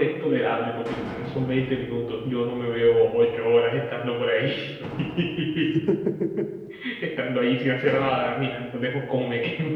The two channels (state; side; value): identical; both; correlation 1.00